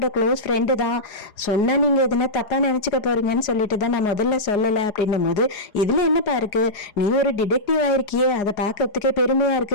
க்ளோஸ் ஃப்ரெண்டு தான், சொன்னா நீங்க எதுனா தப்பா நினைச்சுக்க போறீங்கன்னு சொல்லிட்டு தான் நான் முதல்ல சொல்லல அப்படின்னும் போது, இதுல என்னப்பா இருக்கு, நீ ஒரு டிடெக்டிவ் ஆயிருக்கியே, அதை பார்க்கறதுக்கே பெருமையா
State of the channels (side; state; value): right; late; 4.9 ms